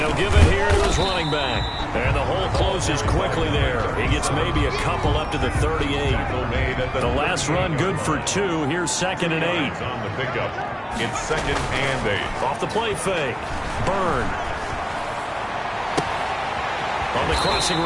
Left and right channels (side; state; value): both; identical; correlation 1.00